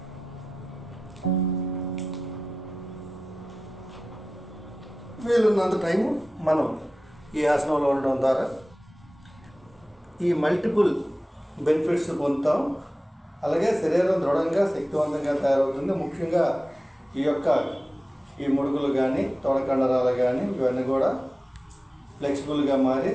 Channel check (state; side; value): normal; both; correlation 0.95